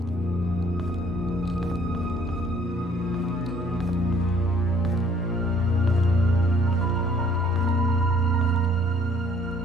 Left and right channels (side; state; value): both; normal; correlation 0.59